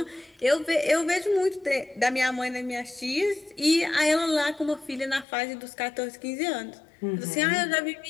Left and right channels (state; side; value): drops out; right; at 5.2 s